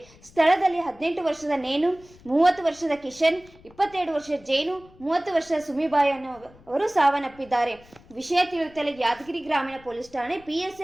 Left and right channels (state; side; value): noise; left; rumble, 25 dB below the sound